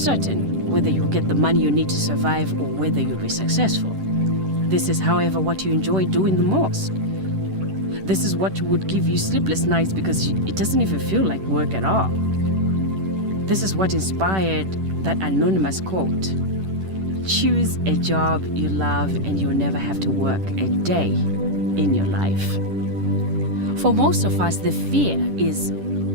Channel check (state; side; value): late; left; 10 ms